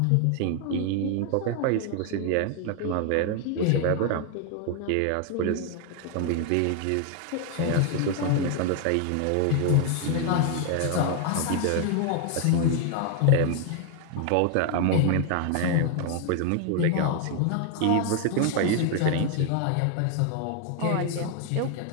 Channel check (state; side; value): different; both; correlation 0.00